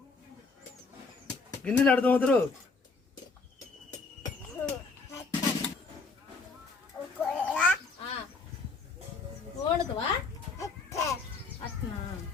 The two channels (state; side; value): quieter; right; 4.1 dB